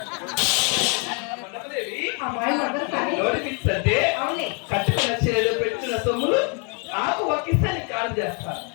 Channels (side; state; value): right; quieter; 36.6 dB